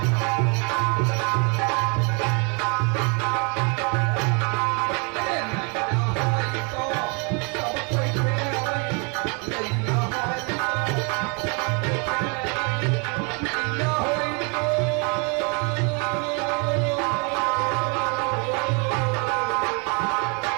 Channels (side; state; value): left; quieter; 34.4 dB